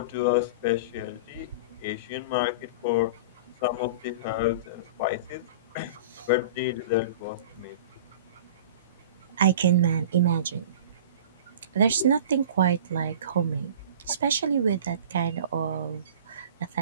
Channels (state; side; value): inverted; both; correlation -0.38